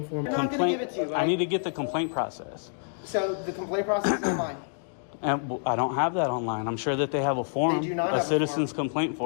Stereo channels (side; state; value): right; silent; digital silence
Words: form. I'm not gonna give it to you. I need to get the complaint process. So the complaint process is online. And I don't have that online. I'm sure that they have a form, They do not a have a citizen's complaint